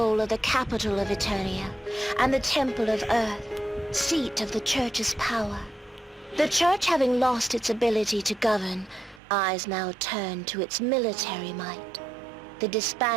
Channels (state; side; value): drops out; left; at 9.2 s